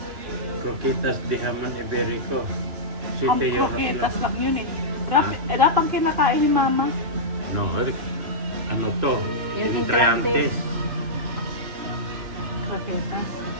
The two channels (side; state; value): left; late; 2.9 ms